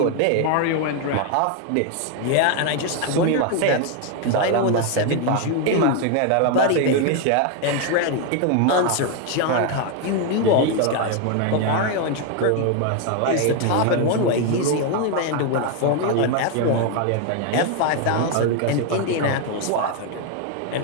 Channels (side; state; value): both; different; correlation 0.01